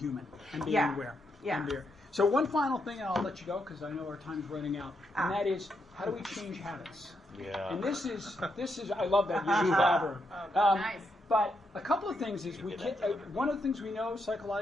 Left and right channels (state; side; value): normal; both; correlation 0.80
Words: and being aware. Yeah. And so one final thing, and I'll let you go because I know our time's running out, and that is, how do we change habits? Yeah. And this is I love that you elaborate. Nice. But a couple of things is one of the things we know